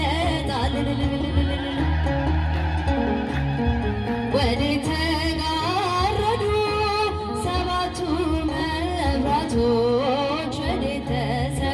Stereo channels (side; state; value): both; identical; correlation 1.00